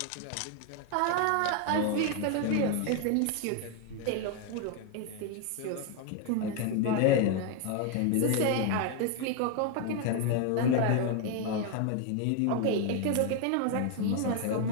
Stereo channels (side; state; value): both; different; correlation 0.01